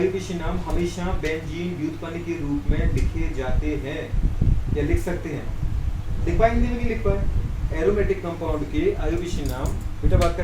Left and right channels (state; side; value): identical; both; correlation 1.00